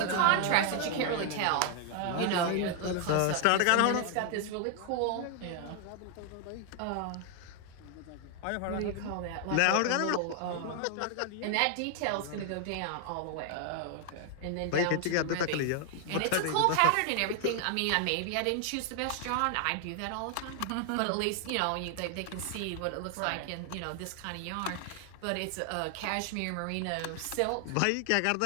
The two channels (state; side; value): different; both; correlation 0.00